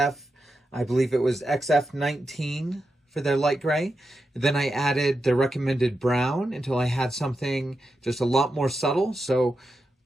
I believe it was XF19 for their light gray. Then I added the recommended brown until I had something just a lot more subtle. So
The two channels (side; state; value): both; normal; correlation 0.88